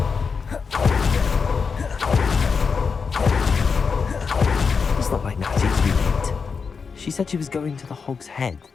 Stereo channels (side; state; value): right; quieter; 5.4 dB